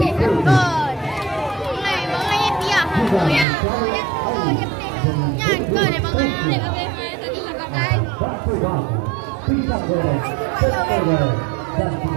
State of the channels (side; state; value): left; drops out; at 3.5 s